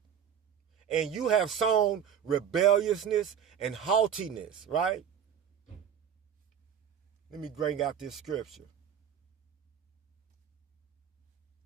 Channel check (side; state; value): left; quieter; 8.5 dB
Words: And you have sown rebelliousness and haughtiness, right? Let me bring out this scripture.